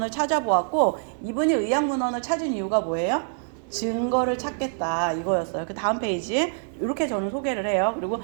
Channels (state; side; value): silent; left; digital silence